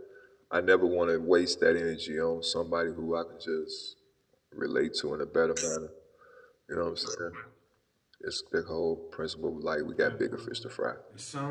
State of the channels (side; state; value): both; identical; correlation 1.00